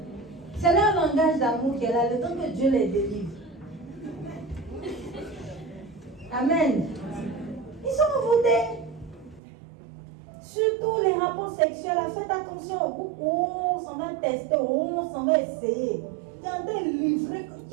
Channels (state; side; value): drops out; left; at 9.4 s